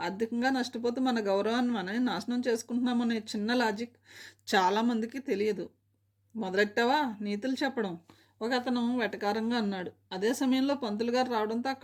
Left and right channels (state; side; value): identical; both; correlation 1.00